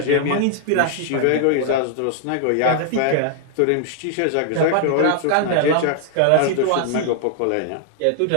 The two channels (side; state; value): both; different; correlation 0.00